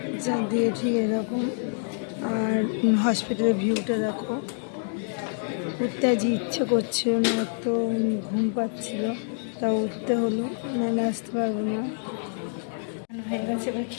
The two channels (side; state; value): right; silent; digital silence